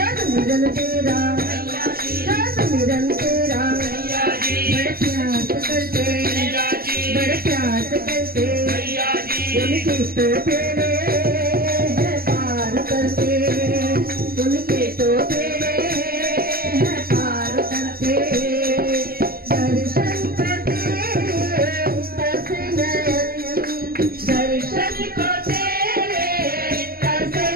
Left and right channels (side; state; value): left; late; 0.43 ms